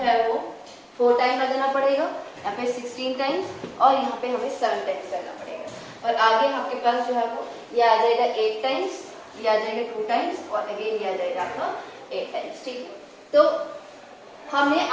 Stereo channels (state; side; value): identical; both; correlation 1.00